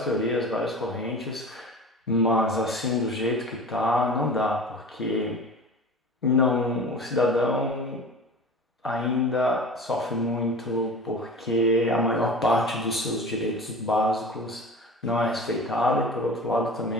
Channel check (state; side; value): normal; both; correlation 0.36